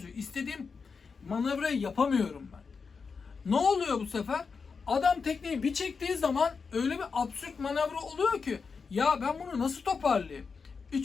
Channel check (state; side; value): quieter; right; 5.2 dB